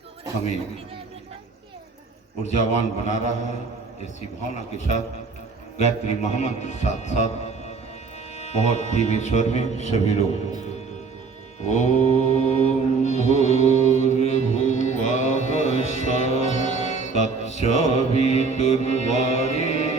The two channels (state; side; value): quieter; left; 4.6 dB